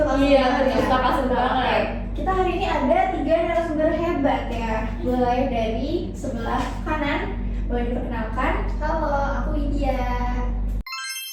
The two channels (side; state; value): both; identical; correlation 1.00